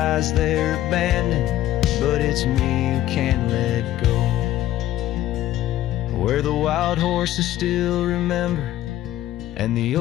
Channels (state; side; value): quieter; right; 13.8 dB